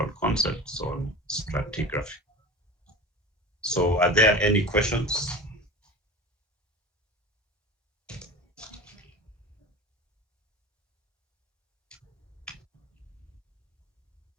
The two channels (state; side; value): normal; both; correlation 0.33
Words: concepts on stratigraphy. So are there any questions?